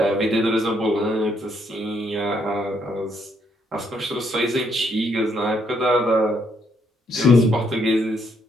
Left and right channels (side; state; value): both; normal; correlation 0.72